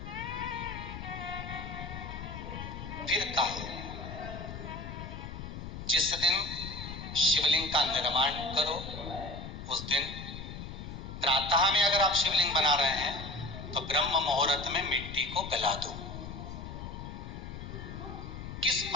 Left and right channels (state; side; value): noise; left; rumble, 9 dB below the sound